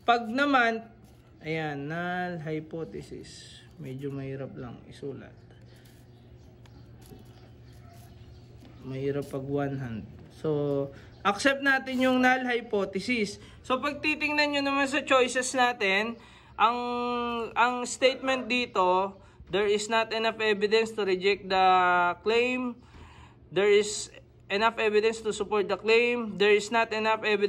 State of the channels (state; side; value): identical; both; correlation 1.00